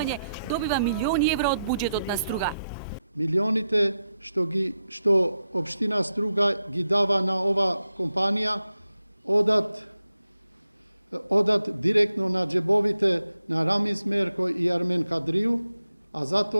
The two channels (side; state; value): both; inverted; correlation -0.88